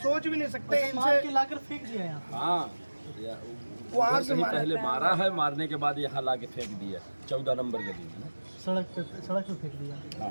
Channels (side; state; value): both; inverted; correlation -1.00